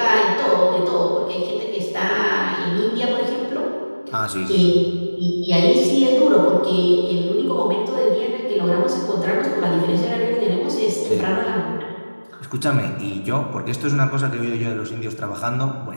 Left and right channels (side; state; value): both; inverted; correlation -1.00